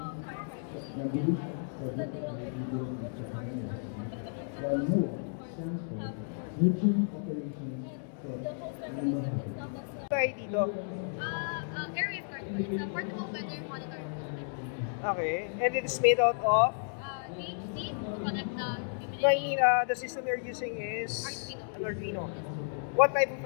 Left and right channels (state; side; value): silent; right; digital silence